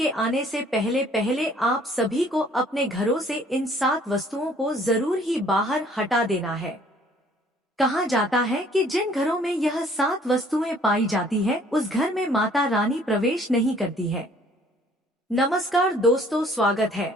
आने से पहले पहले आप सभी को अपने घरों से इन 7 वस्तुओं को जरूर ही बाहर हटा देना है। कहा जाता है कि जिन घरों में यह 7 वस्तुएं पाई जाती है उस घर में माता रानी प्रवेश नहीं करती है। नमस्कार दोस्तों, स्वागत है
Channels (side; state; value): both; normal; correlation 0.58